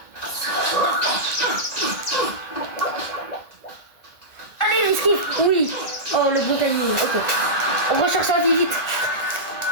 Allez, l'esquive. Oui. Oh, le bon timing. Ok. On recherche sa vie vite.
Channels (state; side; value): late; right; 1.9 ms